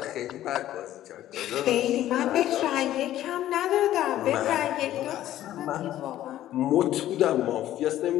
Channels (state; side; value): quieter; right; 13.1 dB